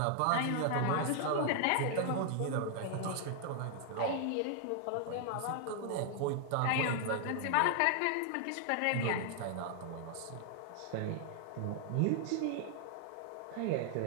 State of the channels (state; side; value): different; both; correlation 0.00